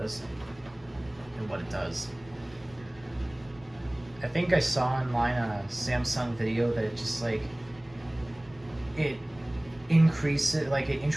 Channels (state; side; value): noise; left; rumble, 25 dB below the sound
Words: is and what it does. I think I saw online on a Samsung video that it just like it